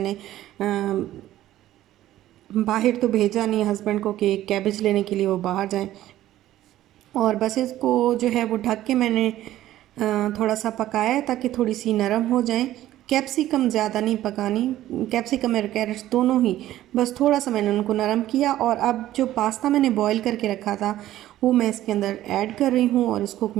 बाहर तो भेजा नहीं हस्बैंड को कि कैबेज लेने के लिए वो बाहर जाएं। और बस इसको जो है वो ढक के मैंने थोड़ा सा पकाया है ताकि थोड़ी सी नरम हो जाएं। कैप्सिकम ज़्यादा नहीं पकानी, कैप्सिकम और कैरेट्स दोनों ही, बस थोड़ा सा मैंने उनको नरम किया। और अब जो पास्ता मैंने बॉईल करके रखा था वो मैं इसके अंदर ऐड कर रही हूँ और इसको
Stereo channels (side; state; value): left; quieter; 13.9 dB